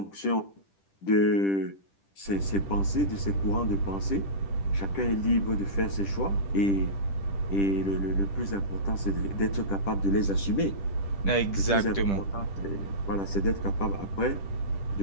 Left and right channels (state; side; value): late; right; 10 ms